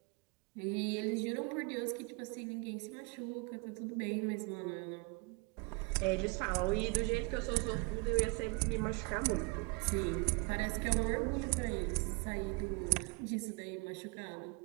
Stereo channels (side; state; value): left; quieter; 29.5 dB